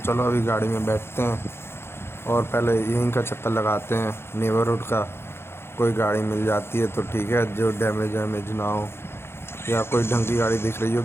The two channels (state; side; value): late; right; 0.12 ms